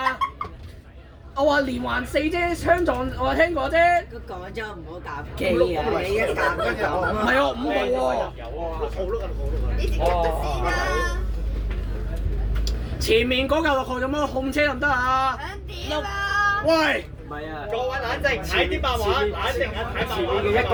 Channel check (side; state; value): both; identical; correlation 1.00